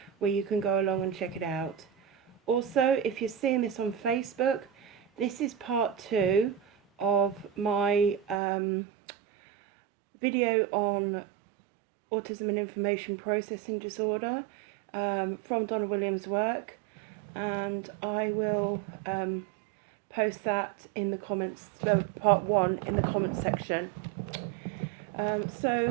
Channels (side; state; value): left; drops out; at 8.4 s